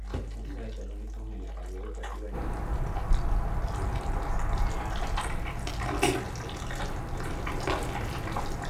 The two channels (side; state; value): both; identical; correlation 1.00